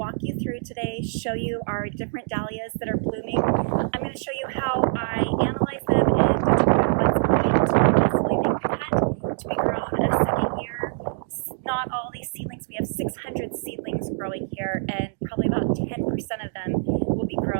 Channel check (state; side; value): silent; left; digital silence